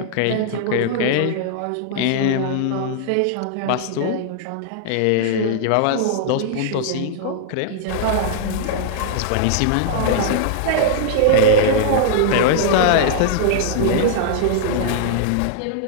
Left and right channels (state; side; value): different; both; correlation -0.01